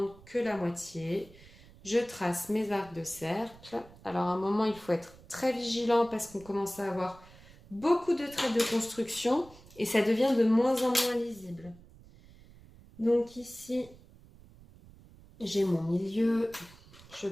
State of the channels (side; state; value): right; noise; rumble, 22 dB below the sound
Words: que la moitié. Je trace mes arcs de cercle. Alors à un moment, il faut être très vigilant parce qu'on commence à avoir beaucoup de traits de construction et ça devient de moins en moins lisible. Donc ici, j'ai mon milieu. Je